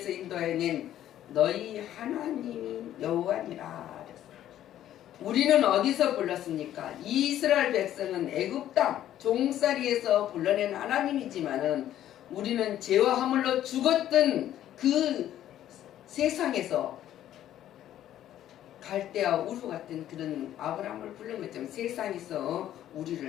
인도해낸 너희 하나님이 여호와니라. 우리는 어디서 불렀습니까? 이스라엘 백성은 애굽 땅 종살이에서 불러낸 하나님이지만은 우리는 죄와 허물로 죽었던 그 세상에서 갈대와 우루 같은 그런 아브라함을 부른 것처럼 세상에서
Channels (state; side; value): quieter; right; 12.0 dB